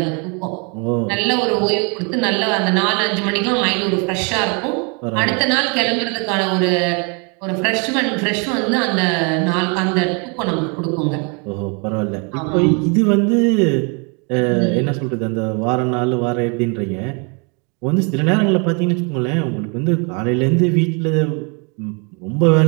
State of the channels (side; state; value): left; quieter; 34.5 dB